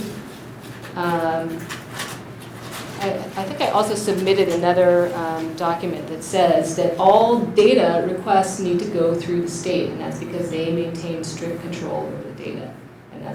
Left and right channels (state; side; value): identical; both; correlation 1.00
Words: I think I also submitted another document that says that all data requests need to go through the state, and that's because they maintain strict control over the data, and